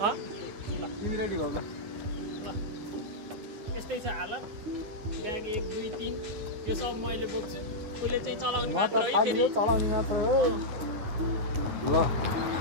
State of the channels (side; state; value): left; late; 9.6 ms